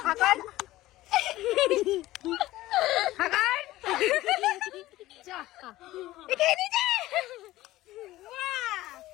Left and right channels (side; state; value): right; quieter; 16.6 dB